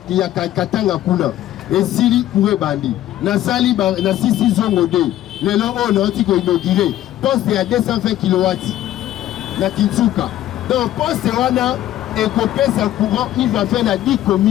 kuna esili kure bandi nasali na sisi zongo de lelo on a oti ko inaugurer poste ya 220 kW na Kinsuka donc poste wana ekopesa courant il va faire na 10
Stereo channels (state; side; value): quieter; right; 13.3 dB